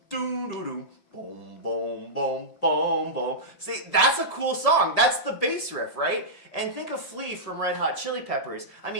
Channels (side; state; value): right; late; 5.8 ms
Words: doom doom doom boom boom boom boom boom. See, that's a cool song. That's the bass riff, right? And think of Flea from Red Hot Chili Peppers. I